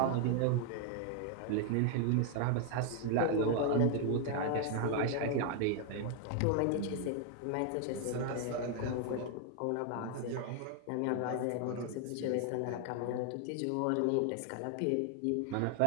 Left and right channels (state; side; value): different; both; correlation 0.00